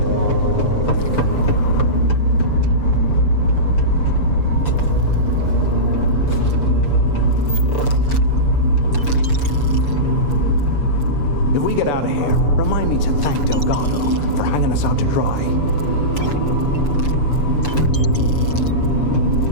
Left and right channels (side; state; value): right; late; 6.9 ms